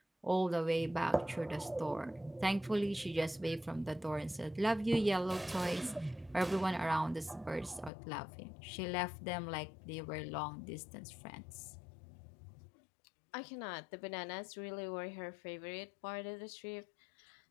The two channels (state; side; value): drops out; right; at 7.9 s